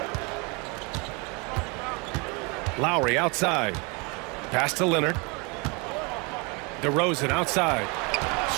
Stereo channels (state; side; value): quieter; left; 30.1 dB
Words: Lowry outside. Pass to Leonard. DeRozan outside.